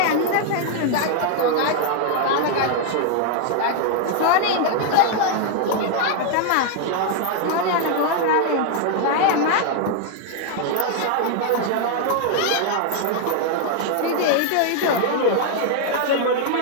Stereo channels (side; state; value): both; different; correlation 0.00